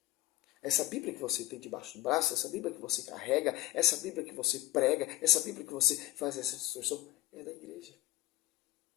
Essa Bíblia que você tem debaixo do braço, essa Bíblia que você carrega, essa Bíblia que você prega, essa Bíblia que você faz essa distorção, é da igreja.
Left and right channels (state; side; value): quieter; right; 17.1 dB